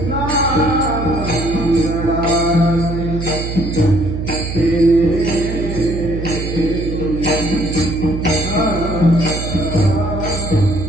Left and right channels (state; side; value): noise; right; hum, 5 dB below the sound